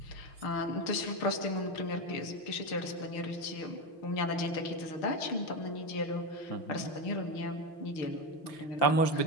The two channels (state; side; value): late; right; 6.6 ms